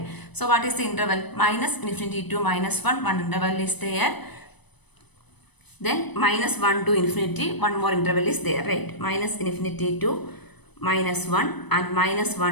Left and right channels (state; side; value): late; right; 0.99 ms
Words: So what is the interval? Minus infinity to minus 1. One interval is there. Then minus 1 to infinity. One more interval is there, right? Minus infinity to minus 1 and minus